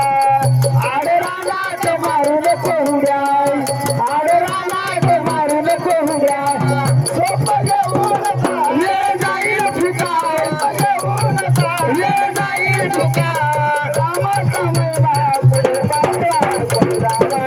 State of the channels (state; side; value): identical; both; correlation 1.00